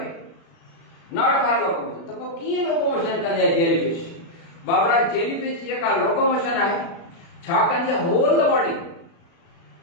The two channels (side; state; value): right; late; 36 ms